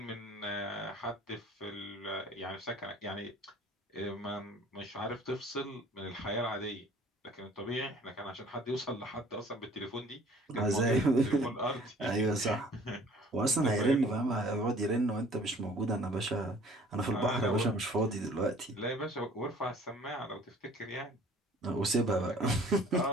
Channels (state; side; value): normal; both; correlation 0.52